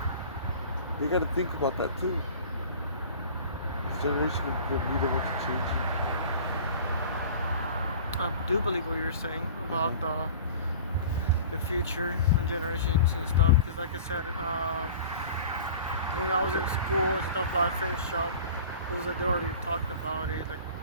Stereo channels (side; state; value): both; inverted; correlation -0.41